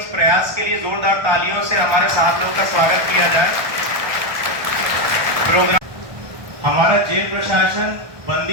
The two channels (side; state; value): left; late; 1.2 ms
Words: प्रयास के लिए जोरदार तालियों से हमारे साथ लोगों का स्वागत किया जाए। प्रोग्राम हमारा जेल प्रशासन